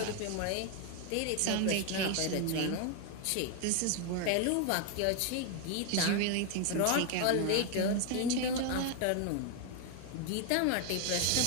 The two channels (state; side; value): different; both; correlation 0.00